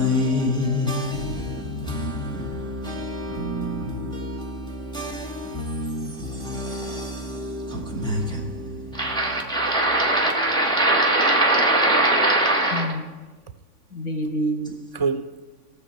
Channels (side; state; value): right; late; 3.5 ms